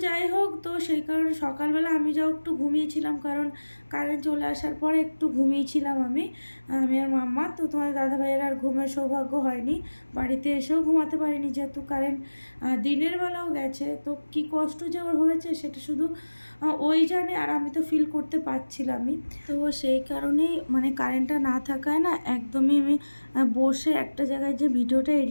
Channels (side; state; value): both; inverted; correlation -1.00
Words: যাই হোক, তো সেই কারণে সকালবেলা আমি যাও একটু ঘুমিয়েছিলাম, কারণ কারেন্ট চলে আসার পরে একটু ঘুমিয়েছিলাম আমি আর মাম্মা। তো তোমাদের দাদাভাইয়ের আর ঘুমের সৌভাগ্য হয়নি, বাড়িতে এসেও ঘুমাতে পারিনি, যেহেতু কারেন্ট দিনের বেলাও গেছে। তো কী কষ্ট যে ওর হয়েছে সেটা শুধু ওই জানে, আর আমি তো ফিল করতে পারছিলামই। তো সেই কারণেই মানে কারেন্টটা না থাকায় না একদমই আমি বসে একটা জায়গায় যে ভিডিওটা